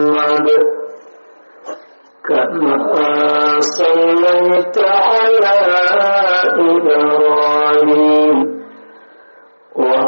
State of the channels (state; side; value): inverted; both; correlation -1.00